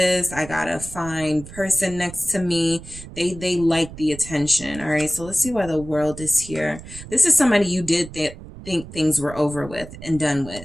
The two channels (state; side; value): noise; right; rumble, 14 dB below the sound